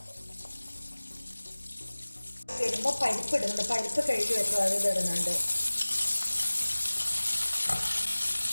വരുമ്പോൾ പരിപ്പ് ഇടുന്നുണ്ട്, പരിപ്പ് കഴുകി വെച്ചു അത് ഇതിടുന്നുണ്ട്.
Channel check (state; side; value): inverted; both; correlation -1.00